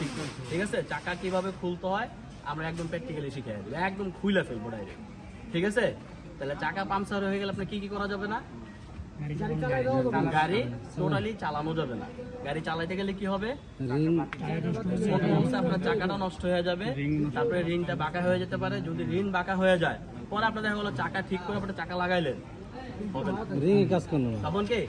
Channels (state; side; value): identical; both; correlation 1.00